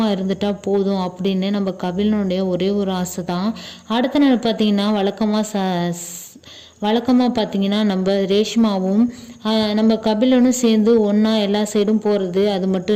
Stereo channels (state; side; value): identical; both; correlation 1.00